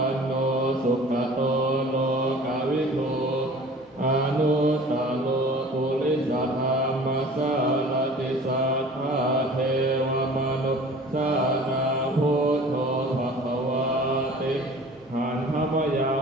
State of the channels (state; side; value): normal; both; correlation 0.44